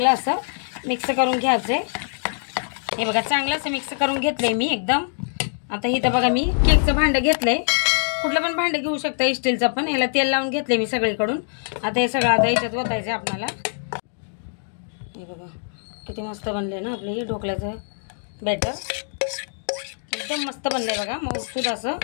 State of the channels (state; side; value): silent; right; digital silence